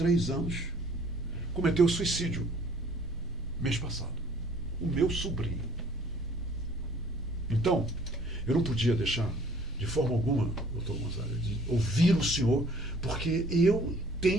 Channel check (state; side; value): normal; both; correlation 0.56